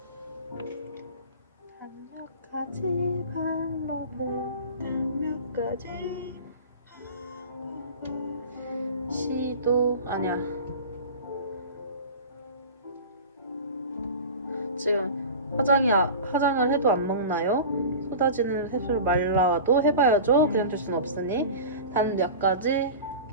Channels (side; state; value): both; inverted; correlation -0.34